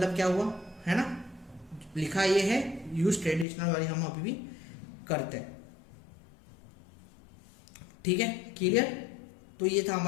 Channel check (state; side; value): drops out; right; at 3.5 s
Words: क्या हुआ, है ना, लिखा ये है यूज ट्रेडिशनल वाली हम अभी भी करते हैं, ठीक है, क्लियर। तो ये था